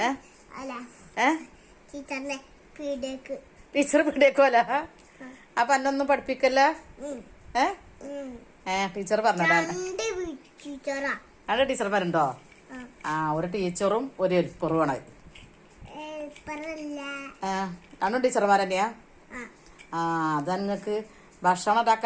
ടീച്ചർ പീടിയേക്കോല. അപ്പൊ എന്നൊന്നും പഠിപ്പിക്കല്ല. ടീച്ചർ പറഞ്ഞതാ. അവിടെ ടീച്ചർ പറഞ്ഞോ? ഒരു ടീച്ചറും ഒരു ഹെൽപ്പറുമാണ്. രണ്ടും ടീച്ചർമാർ തന്നെയാ? അതാ നിങ്ങക്ക് ഭക്ഷണം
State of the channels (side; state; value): both; identical; correlation 1.00